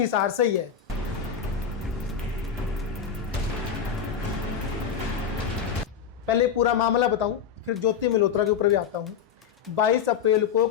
से ही है। पहले पूरा मामला बताऊं, फिर ज्योति मल्होत्रा के ऊपर भी आता हूं। 22 अप्रैल को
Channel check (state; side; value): quieter; right; 7.6 dB